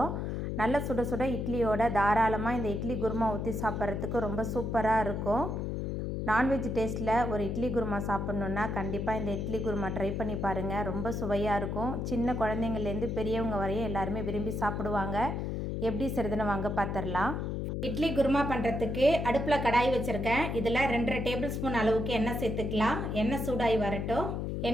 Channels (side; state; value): left; noise; hum, 2 dB below the sound